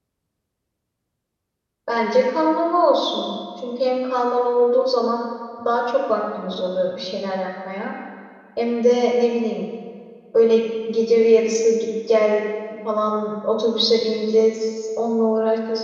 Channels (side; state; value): both; identical; correlation 1.00